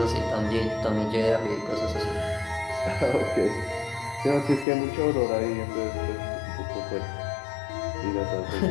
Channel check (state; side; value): drops out; right; at 4.7 s